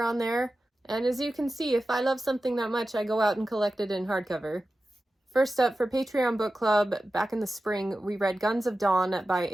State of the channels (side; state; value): both; normal; correlation 0.94